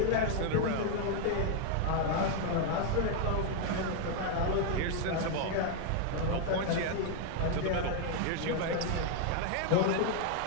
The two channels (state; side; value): different; both; correlation 0.00